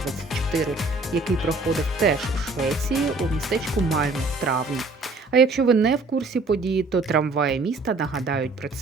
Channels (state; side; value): quieter; left; 3.4 dB